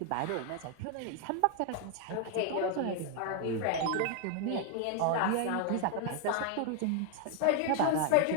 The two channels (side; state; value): both; different; correlation 0.00